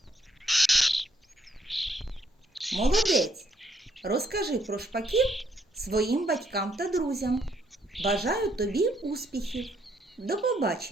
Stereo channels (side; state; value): both; normal; correlation 0.71